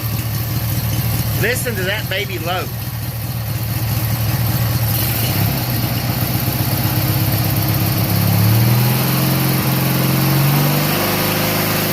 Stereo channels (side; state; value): both; identical; correlation 1.00